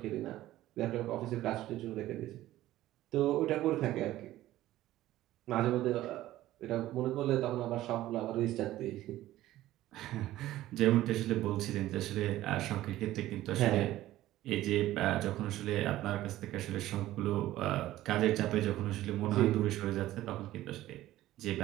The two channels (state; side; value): quieter; left; 15.0 dB